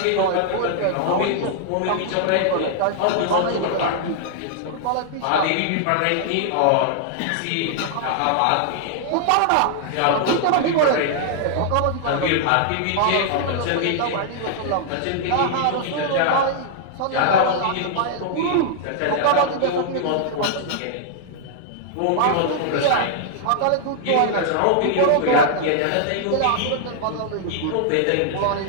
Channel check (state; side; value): different; both; correlation -0.01